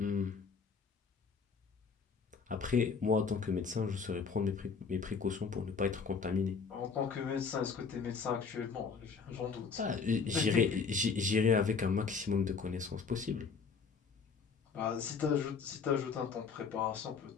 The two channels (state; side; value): quieter; right; 5.4 dB